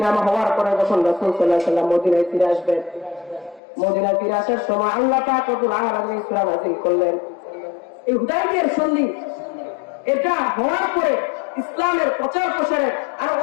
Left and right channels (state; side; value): drops out; right; at 3.6 s